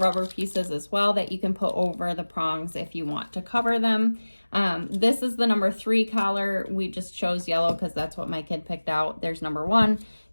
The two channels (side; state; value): both; inverted; correlation -1.00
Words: pieces as well that you can put over the prongs if you want to cover them. This is the number 3 collar. We just chose yellow because that's what my kid picked out. There's number 1